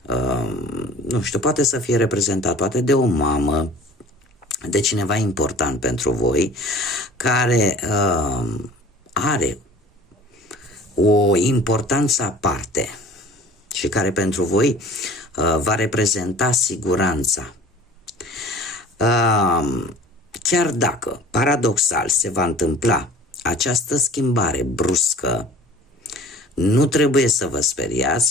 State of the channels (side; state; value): both; normal; correlation 0.45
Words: nu știu, poate să fie reprezentat poate de o mamă, de cineva important pentru voi, care are o importanță aparte și care pentru voi va reprezenta siguranța. Chiar dacă, paradoxal, se va întâmpla această schimbare bruscă, nu trebuie să vă